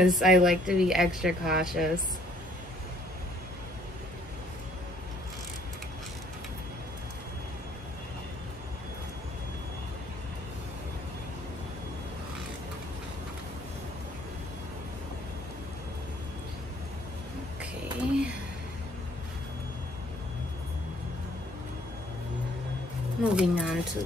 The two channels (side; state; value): both; normal; correlation 0.62